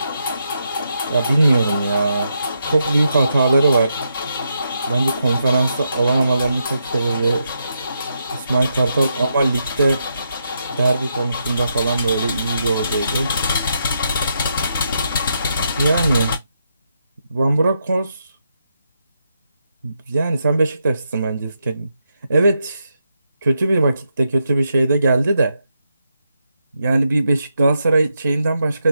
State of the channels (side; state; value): both; inverted; correlation -0.82